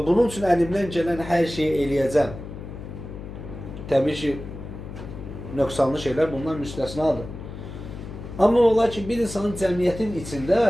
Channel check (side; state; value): left; noise; hum, 11 dB below the sound